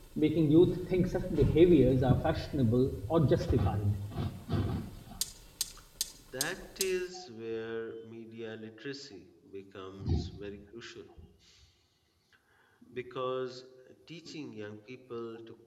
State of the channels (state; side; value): identical; both; correlation 1.00